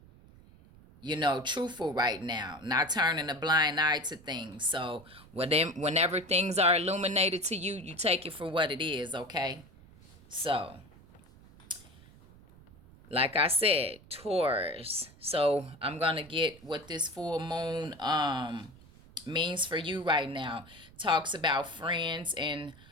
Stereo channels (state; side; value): noise; right; rumble, 23 dB below the sound